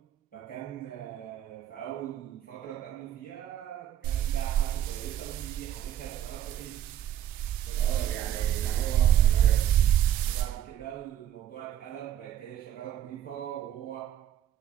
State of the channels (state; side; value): quieter; left; 11.0 dB